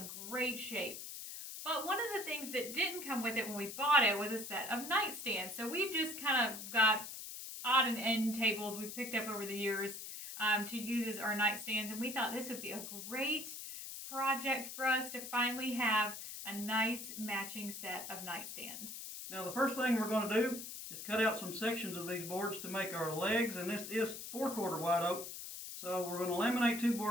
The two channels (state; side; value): noise; left; hiss, 9 dB below the sound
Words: great shape. But one of the things that didn't come with it when we bought it was a set of nightstands. So we've just kind of got odd and end tables we've picked up over the years to use as our nightstands. And we thought this would be a great project for us to finally have a nice matching set of nightstands. Now the first thing we're going to do is cut out some sections of these boards to make our legs, and this is 4/4 white oak. So we're going to laminate two